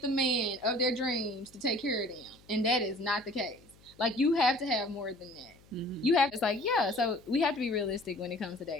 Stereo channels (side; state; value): left; noise; hum, 27 dB below the sound